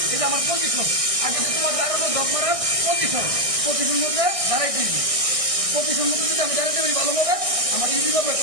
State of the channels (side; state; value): left; late; 1.6 ms